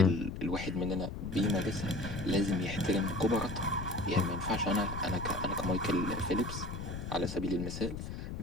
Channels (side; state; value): left; noise; rumble, 7 dB below the sound